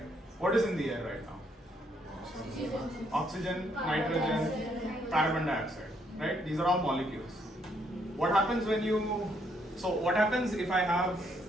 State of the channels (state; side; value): normal; both; correlation 0.72